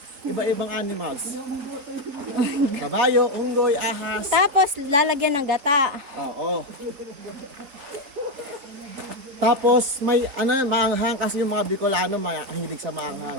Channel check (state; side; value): late; left; 4.2 ms